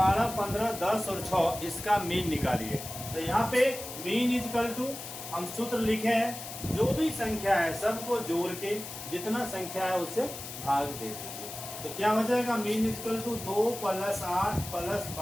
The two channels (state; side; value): noise; left; hiss, 10 dB below the sound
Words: 15, 10 और 6 इसका मीन निकालिए। तो यहाँ पे मीन इजकल टू हम सूत्र लिखे हैं, जो भी संख्या है सबको जोड़ के जितना संख्या है उससे भाग दे दीजिए। तो क्या हो जाएगा, mean is equal to 2 + 8 + 12